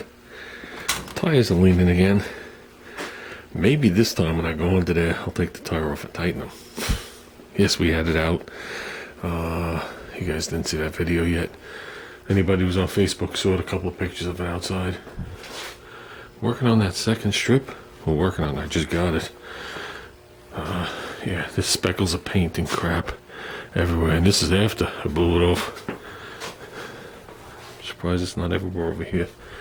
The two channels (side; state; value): both; identical; correlation 1.00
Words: Tires are leaning again. Maybe this time when I go under there, I'll take the tire off and tighten them. Yes, we had it out. You guys didn't see that video yet. Anybody who's on Facebook saw a couple of pictures of it outside. Working on that second strip. We're working on it. I just got it. Yeah, there's speckles of paint and crap everywhere. And this is after I blew it off. Surprised it's not everywhere over here.